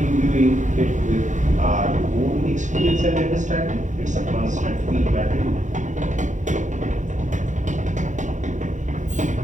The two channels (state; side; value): late; left; 0.36 ms